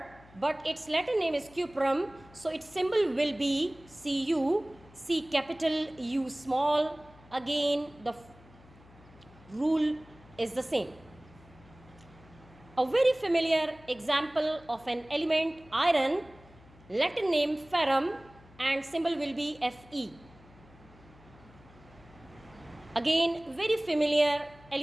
but its Latin name is cuprum. So its symbol will be Cu, C capital, U small. Again, the rule is the same. A very familiar example of an element, iron, Latin name ferrum and symbol will be Fe. Again, very familiar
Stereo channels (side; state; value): left; noise; hum, 24 dB below the sound